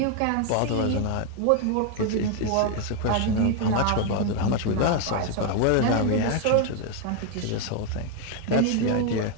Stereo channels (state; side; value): different; both; correlation 0.01